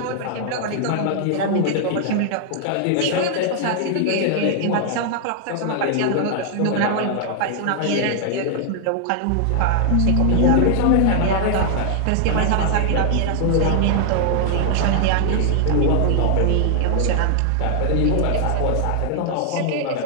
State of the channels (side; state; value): both; different; correlation -0.01